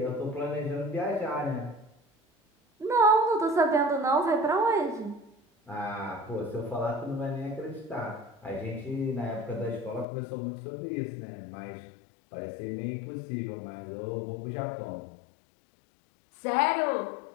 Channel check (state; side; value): drops out; right; at 10.1 s